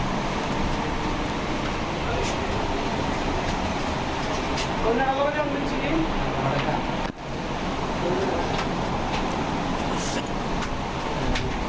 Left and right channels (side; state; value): both; identical; correlation 1.00